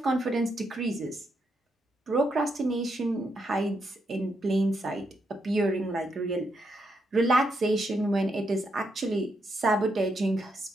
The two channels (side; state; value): both; normal; correlation 0.80